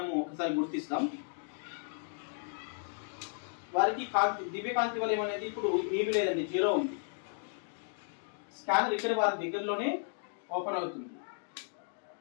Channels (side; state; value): right; silent; digital silence